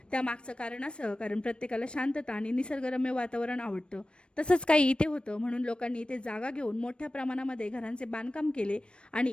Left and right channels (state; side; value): late; right; 0.057 ms